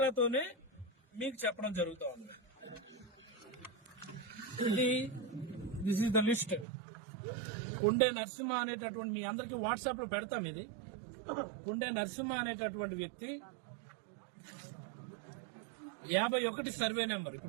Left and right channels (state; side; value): drops out; left; at 6.7 s